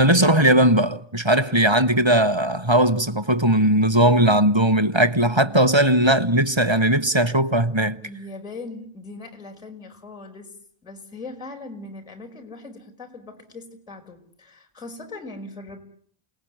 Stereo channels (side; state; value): left; late; 1.3 ms